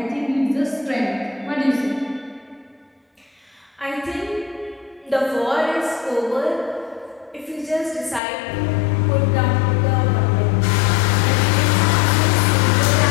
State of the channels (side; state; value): right; drops out; at 8.2 s